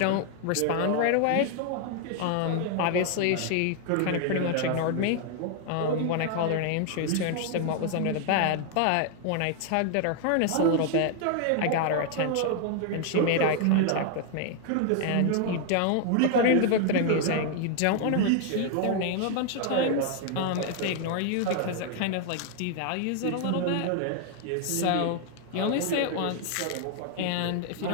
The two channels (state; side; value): different; both; correlation 0.00